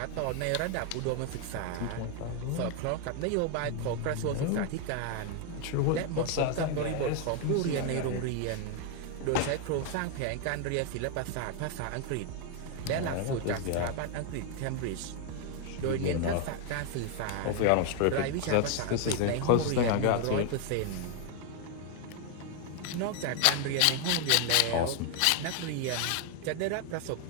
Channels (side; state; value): both; different; correlation 0.01